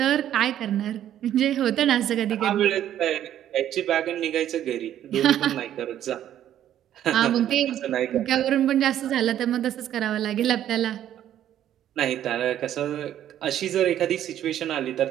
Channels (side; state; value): left; quieter; 11.2 dB